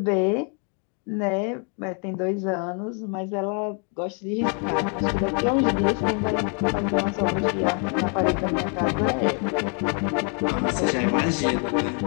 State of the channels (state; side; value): quieter; right; 39.6 dB